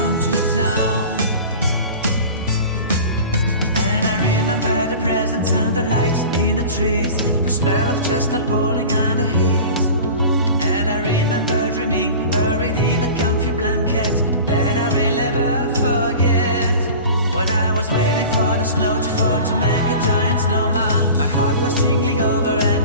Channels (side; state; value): both; inverted; correlation -0.37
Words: to town. And I remember the presents and the lights in the trees, the smell of chestnut boiling on the heat. And I remember dreaming, buried in a comfy blanket that I will never forget. When I was waiting for the snow to fall to make a giant snowman, my heart was jingling over